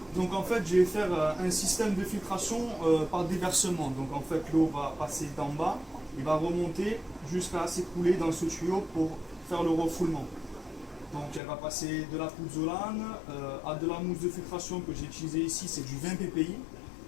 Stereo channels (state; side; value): drops out; right; at 11.4 s